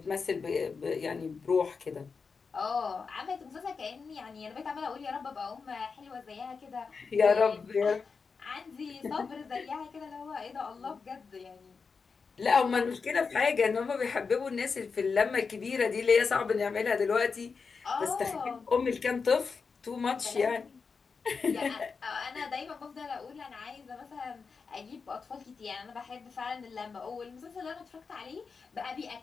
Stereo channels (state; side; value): quieter; right; 5.1 dB